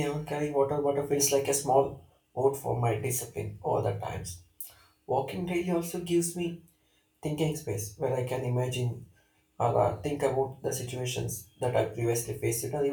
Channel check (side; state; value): both; identical; correlation 1.00